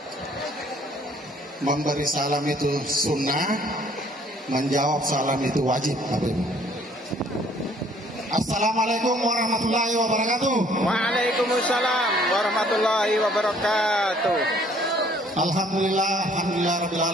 Memberi salam itu sunnah, menjawab salam itu wajib. Assalamualaikum warahmatullahi wabarakatuh. Waalaikumsalam warahmatullahi wabarakatuh. Alhamdulillah rabbil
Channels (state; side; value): normal; both; correlation 0.60